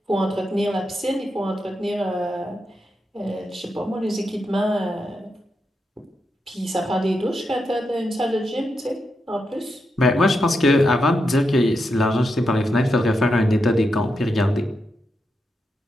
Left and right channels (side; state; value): both; normal; correlation 0.85